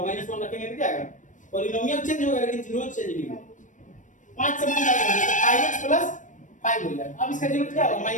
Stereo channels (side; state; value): right; late; 0.37 ms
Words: -1 रखेंगे तो क्या आएगा, पॉलिनोमियल चेंज होगा लेकिन जीरो चेंज नहीं होगा। 5 से मल्टीप्लाई कर दिए तो 5x + 5 हो जाएगा। अब इसका जीरो क्या होगा,